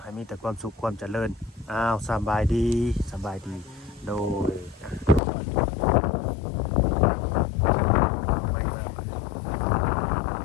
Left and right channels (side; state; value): right; drops out; at 5.2 s